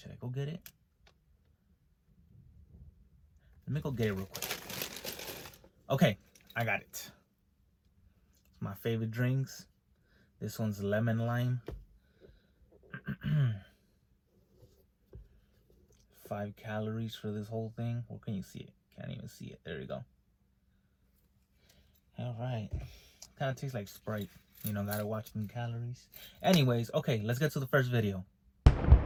I go get it? Let me go get it real quick. Okay, I got it. It's my favorite drinks. This one's lemon lime. 5 calories for this whole thing. Where can you see it? Can't even see it. There you go. All right. Kind of tastes like Sprite. You know, gotta watch them calories. Anyways, okay, let's get to the first video.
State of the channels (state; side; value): identical; both; correlation 1.00